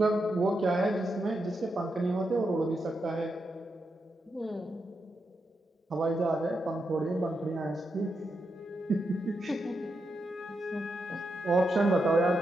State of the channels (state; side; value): normal; both; correlation 0.85